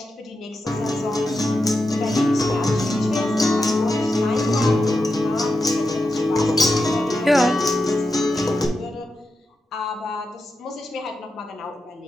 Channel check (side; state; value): both; normal; correlation 0.88